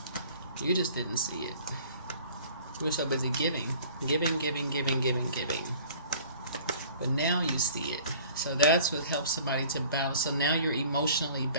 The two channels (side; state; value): both; inverted; correlation -0.49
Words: You just didn't see it. You were so busy giving. But now you see it. So that's what helps somebody to balance. So now you're emotionally